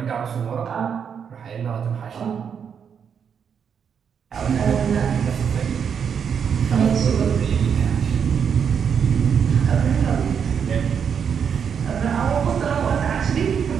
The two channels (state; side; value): quieter; left; 7.3 dB